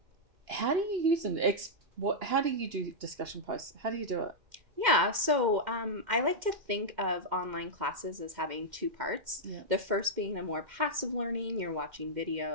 How do you use them? How do you do discussion posts? How do you do it? Yeah, so I like to think of online classes as having two parts. Yeah. The first being a more passive learning. You're watching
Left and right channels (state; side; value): late; left; 2.1 ms